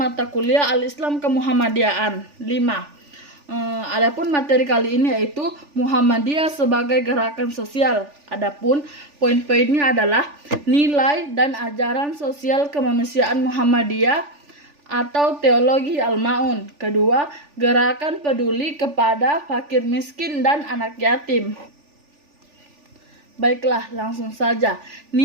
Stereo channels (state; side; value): late; left; 3.4 ms